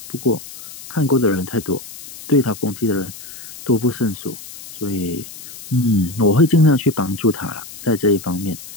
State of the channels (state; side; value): noise; left; hiss, 15 dB below the sound